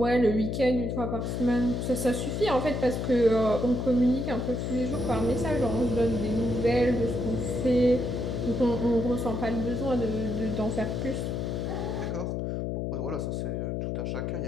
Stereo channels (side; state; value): left; noise; hum, 2 dB below the sound